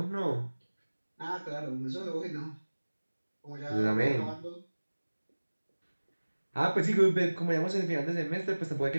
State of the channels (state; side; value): inverted; both; correlation -1.00